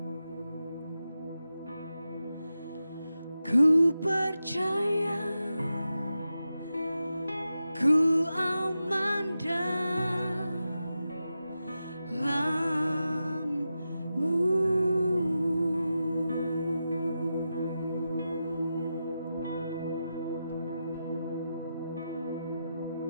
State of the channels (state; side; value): inverted; both; correlation -0.90